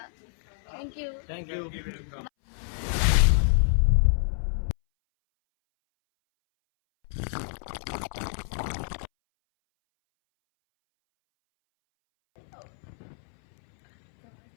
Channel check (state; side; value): silent; right; 60 dB below the other